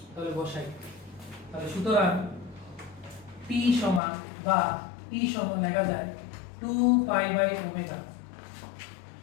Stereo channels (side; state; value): right; drops out; at 4.0 s